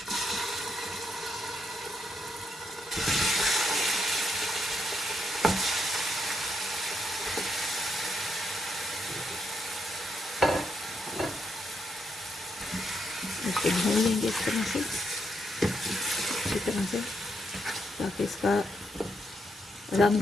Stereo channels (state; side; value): normal; both; correlation 0.79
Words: इसको भून लेंगे इस तरह से, अच्छी तरह से, ताकि इसका रंग